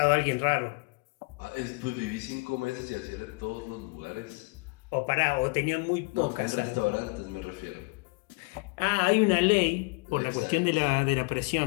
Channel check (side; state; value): right; quieter; 29.7 dB